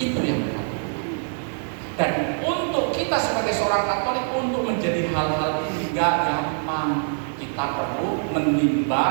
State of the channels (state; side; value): silent; left; digital silence